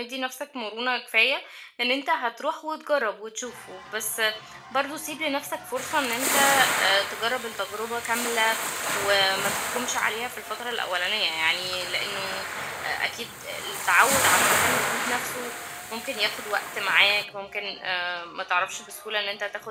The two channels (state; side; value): identical; both; correlation 1.00